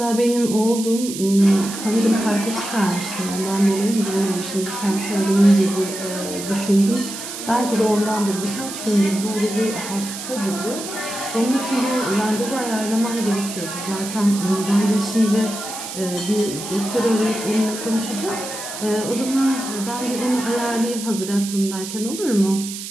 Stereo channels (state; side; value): noise; right; hiss, 9 dB below the sound